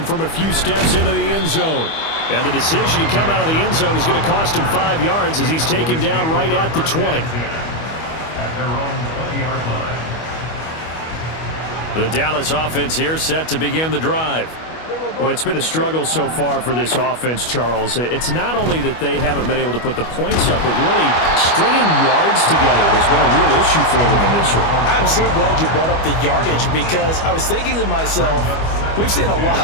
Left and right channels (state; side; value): late; right; 25 ms